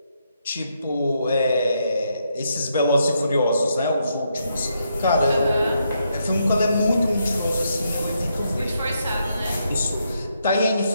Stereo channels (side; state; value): both; inverted; correlation -0.78